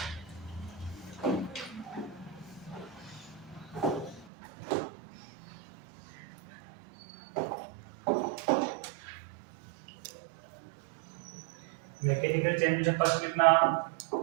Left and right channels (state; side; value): drops out; left; at 4.2 s